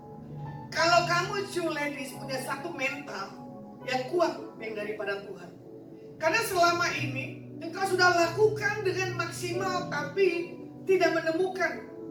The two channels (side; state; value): both; identical; correlation 1.00